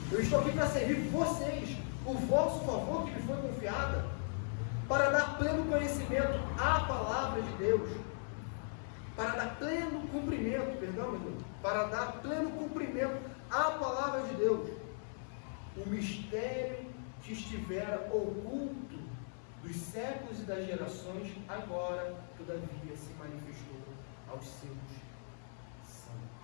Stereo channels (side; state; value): right; silent; 52 dB below the other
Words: Eu estou aqui para servir vocês, o vosso favor que me foi confiada, para dar pleno conhecimento à palavra de Deus, para dar pleno cumprimento, para dar pleno cumprimento à palavra de Deus, o mistério que estivera oculto dos séculos e das gerações, agora, todavia, se manifestou aos seus